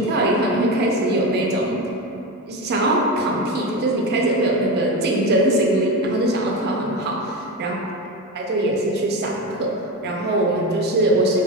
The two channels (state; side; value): normal; both; correlation 0.20